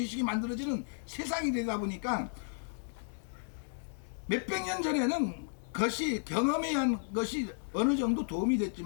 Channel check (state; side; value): silent; right; digital silence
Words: 만들어지는 세상이 되다 보니까 몇백 년 전에는 경험에 의한 것이 어느 정도 도움이